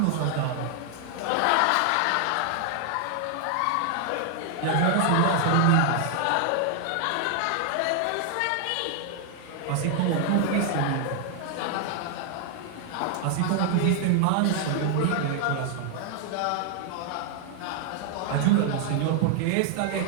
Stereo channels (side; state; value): both; different; correlation 0.00